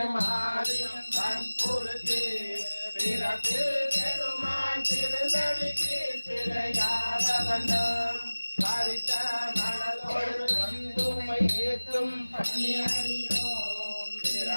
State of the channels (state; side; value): inverted; both; correlation -1.00